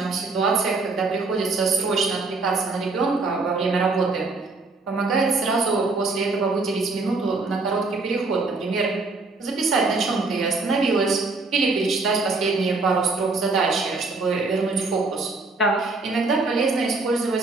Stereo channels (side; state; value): left; quieter; 3.7 dB